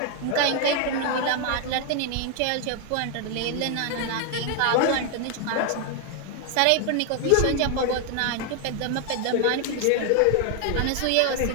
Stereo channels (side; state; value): both; different; correlation 0.00